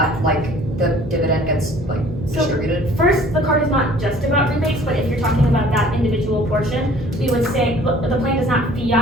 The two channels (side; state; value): right; noise; hum, 12 dB below the sound